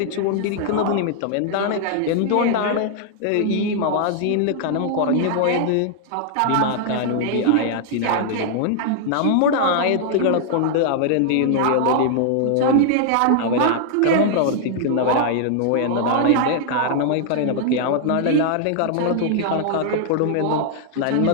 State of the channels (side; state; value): both; different; correlation -0.01